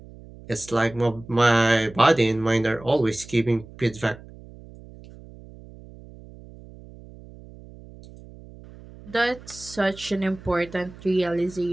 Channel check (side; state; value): right; noise; hum, 19 dB below the sound